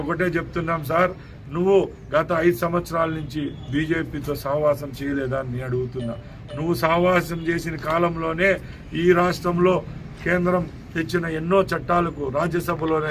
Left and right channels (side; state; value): both; identical; correlation 1.00